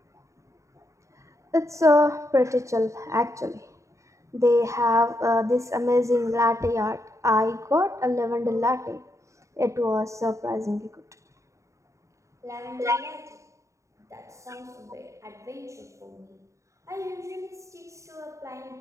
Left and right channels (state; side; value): late; left; 0.15 ms